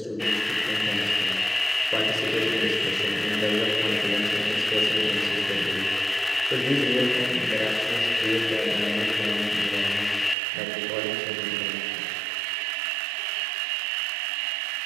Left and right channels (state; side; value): drops out; left; at 10.4 s